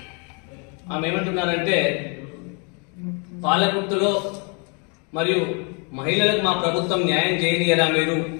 ఆమె ఏమంటున్నారంటే, పాలకుర్తిలో మరియు మహిళలకు మా ప్రభుత్వం న్యాయం చేయనియరా, మీరు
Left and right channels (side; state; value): right; quieter; 35.0 dB